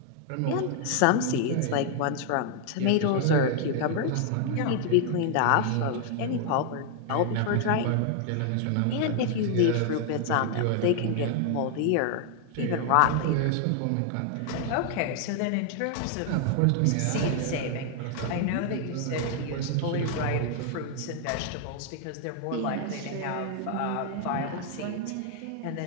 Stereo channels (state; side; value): different; both; correlation 0.00